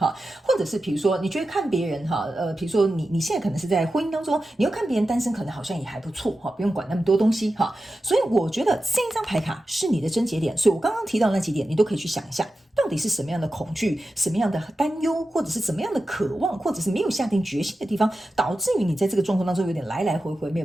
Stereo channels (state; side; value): normal; both; correlation 0.92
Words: 或者是比如说你觉得看别人哈，比如说你现在可能是在婚姻当中，你又看别人单身可能好像也还不错哈，不用管那么多东西哈，所以我觉得这一张牌卡是你的症结点，所以我刚刚提到那几点，你都可以去想一下。到底是什么样的恐惧，什么样的担忧，或者是怎么样的渴望，或者是没有下定决心的地方，导致于你在这个状况当中有点来来回回没有